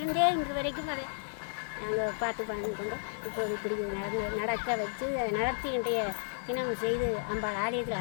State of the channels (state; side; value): silent; right; 56 dB below the other